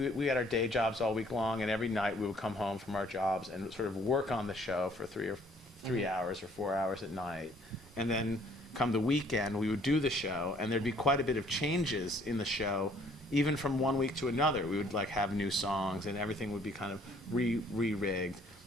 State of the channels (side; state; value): both; normal; correlation 0.60